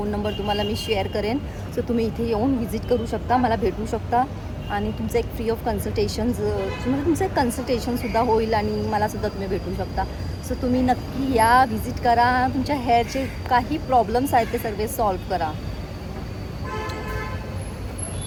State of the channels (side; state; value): both; identical; correlation 1.00